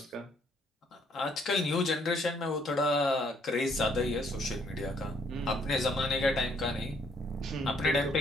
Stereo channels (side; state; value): both; normal; correlation 0.66